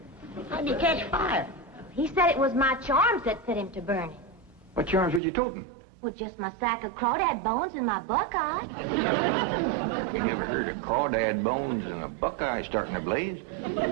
How'd you catch fire? He said it was my charms that set him to burning. What charms was you toting? Well, just my sack of crawdad bones and my buckeye. You never heard of crawdad bones and a buckeye starting a blaze?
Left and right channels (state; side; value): drops out; left; at 5.2 s